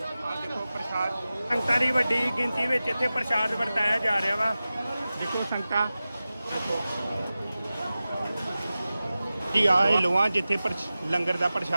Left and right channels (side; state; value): both; inverted; correlation -0.95